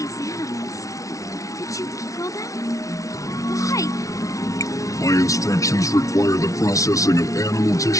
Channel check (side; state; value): right; late; 0.16 ms